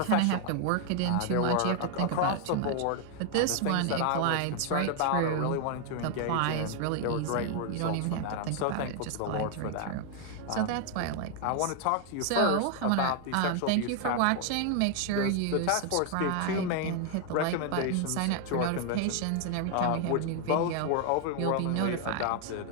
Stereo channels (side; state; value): both; different; correlation 0.00